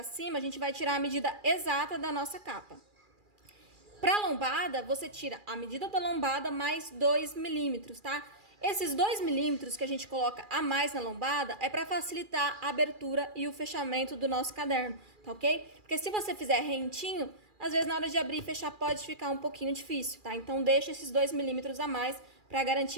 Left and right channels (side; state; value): left; late; 2.4 ms